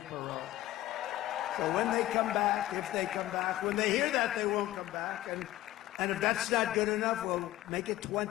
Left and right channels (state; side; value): quieter; right; 15.2 dB